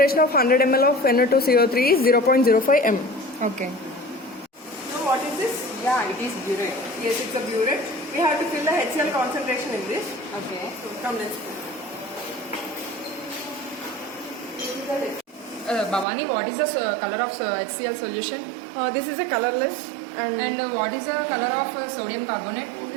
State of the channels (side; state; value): left; drops out; at 16.1 s